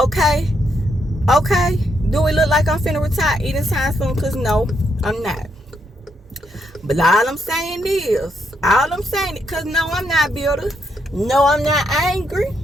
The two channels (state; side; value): normal; both; correlation 0.77